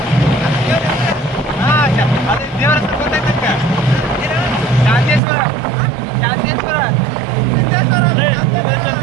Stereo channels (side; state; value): left; drops out; at 5.2 s